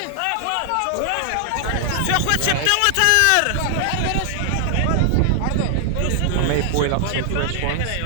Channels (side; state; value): both; different; correlation 0.00